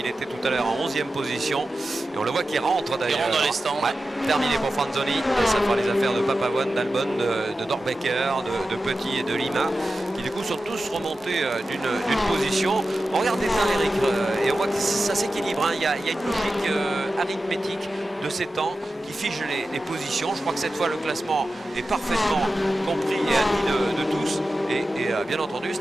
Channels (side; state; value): both; normal; correlation 0.93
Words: était tout à l'heure en 11e position. Et on le voit qui rentre d'ailleurs. Il rentre dans les stands. Ouais, terminé pour Franzoni. Et ça fera les affaires de Papavoine, d'Albon, de Dorbecker, de Petit et de Lima qui du coup sont tous remontés d'une position. On regarde bien Eric et on voit que ça s'équilibre. Hein. Il y a une logique arithmétique de ses temps, qui fiche les positions. Je crois que cette fois le classement est parfaitement compris et admis de tous. Et bien entendu,